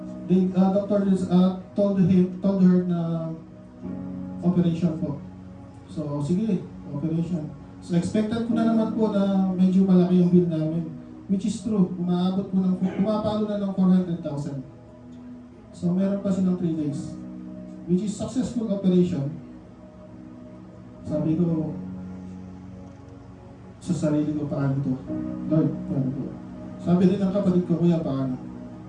the doctor told her na operation po. So, sige, operation. So, expected ko na naman po na medyo malaki yung bill namin. Which is true, pumapalo na ng 400,000. So, meron pa silang 3 days. Which is successful operation. Sabi ko, sa sarili ko, paano to? Lord, paano to? Sabi din ng kapatid ko, Kuya, paano?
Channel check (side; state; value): both; identical; correlation 1.00